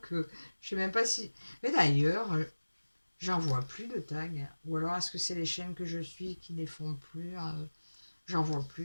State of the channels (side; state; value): both; inverted; correlation -1.00